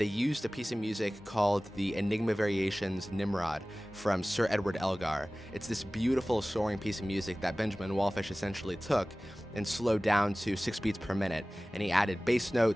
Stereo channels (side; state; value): both; normal; correlation 0.98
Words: used a piece of music called the Enigma Variations Nimrod from Sir Edward Elgar. It's this beautiful soaring piece of music that Benjamin Wallfisch essentially took and slowed down to 6 beats per minute. And he added bass